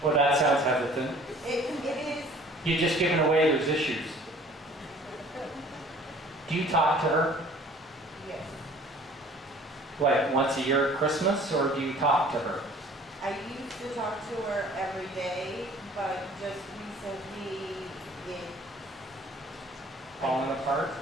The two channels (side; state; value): both; normal; correlation 0.51